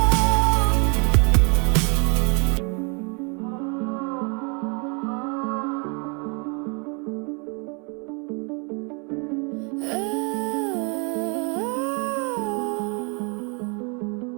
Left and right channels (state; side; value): quieter; left; 34.8 dB